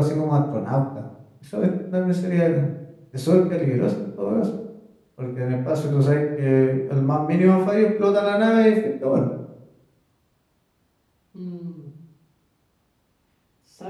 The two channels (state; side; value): identical; both; correlation 1.00